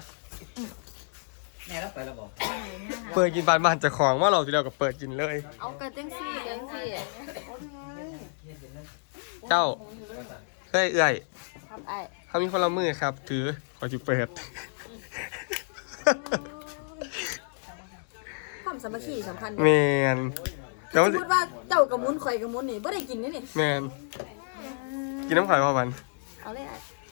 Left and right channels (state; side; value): silent; right; digital silence